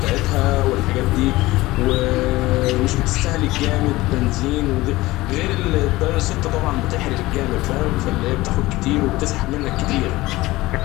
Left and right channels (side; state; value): right; quieter; 19.0 dB